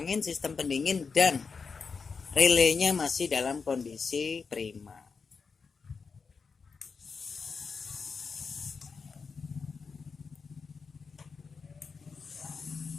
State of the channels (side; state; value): right; quieter; 5.2 dB